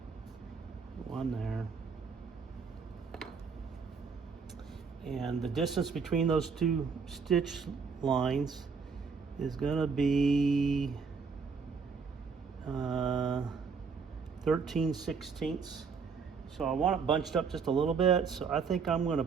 one there. And the distance between those 2 stitch lines is going to be 13/16. So I want it bunched up just a little bit. So I think I'm going to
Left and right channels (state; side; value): quieter; left; 5.5 dB